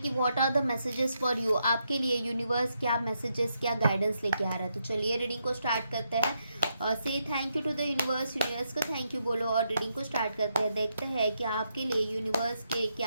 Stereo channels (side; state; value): both; inverted; correlation -0.81